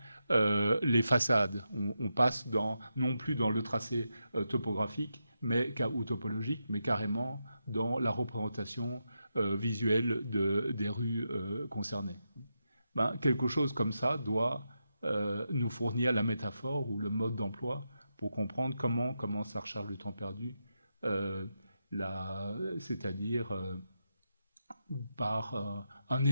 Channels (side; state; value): both; inverted; correlation -0.86